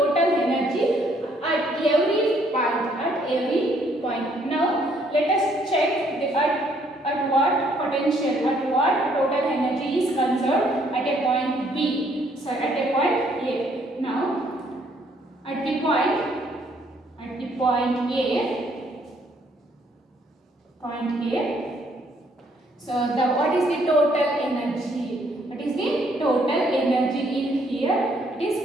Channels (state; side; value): normal; both; correlation 0.67